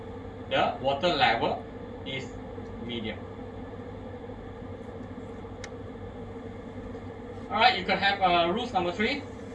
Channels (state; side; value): identical; both; correlation 1.00